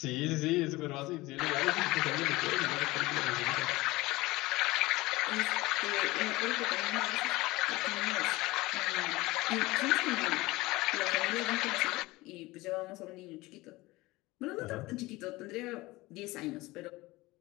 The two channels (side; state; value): right; quieter; 20.4 dB